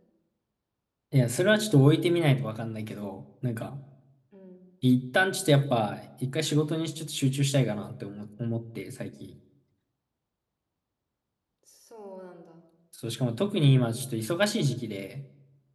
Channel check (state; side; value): identical; both; correlation 1.00